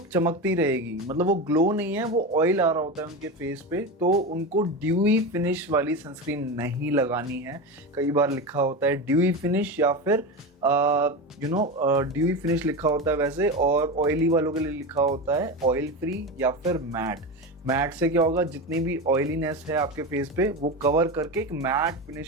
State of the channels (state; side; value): normal; both; correlation 0.21